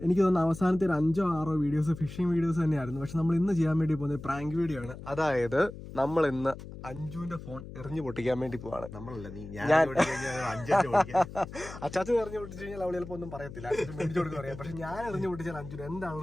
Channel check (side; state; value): left; noise; hum, 13 dB below the sound